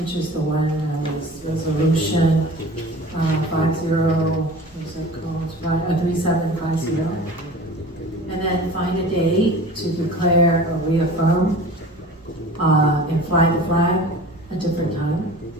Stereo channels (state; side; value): normal; both; correlation 0.40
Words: is the one was resolution 3750, and then find a day to declare or reaffirm and fly the flag a different time.